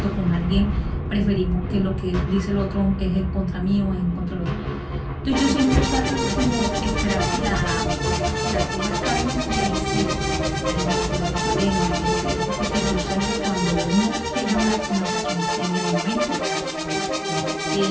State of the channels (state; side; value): identical; both; correlation 1.00